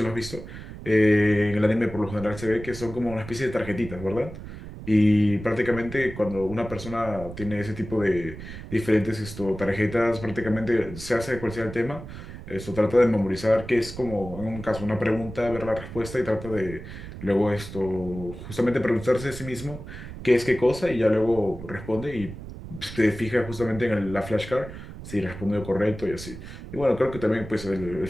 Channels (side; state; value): right; noise; rumble, 12 dB below the sound